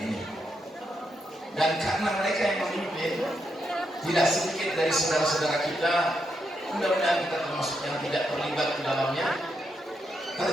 ini. Dan karena mereka yang memimpin, tidak sedikit dari saudara-saudara kita, mudah-mudahan kita termasuk yang tidak terlibat di dalamnya,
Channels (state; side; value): normal; both; correlation 0.82